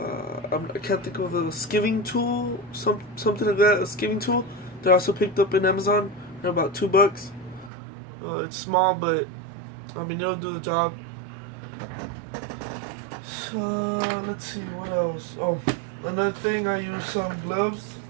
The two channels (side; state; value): left; drops out; at 7.7 s